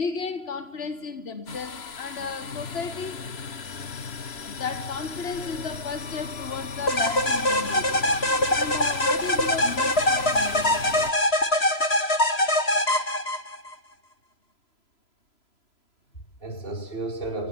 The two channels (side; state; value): right; late; 3.0 ms